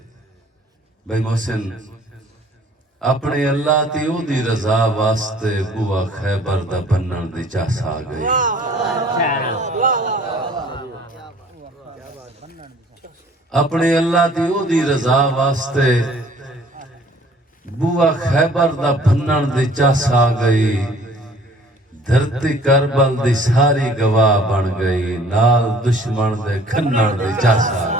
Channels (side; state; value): both; normal; correlation 0.54